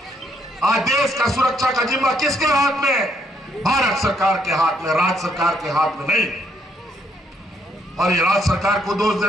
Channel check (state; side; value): normal; both; correlation 0.71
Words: आज देश का सुरक्षा का जिम्मा किसके हाथ में? भारत सरकार के हाथ में, राज्य सरकार के हाथ में नहीं। और ये राज्य सरकार को दोष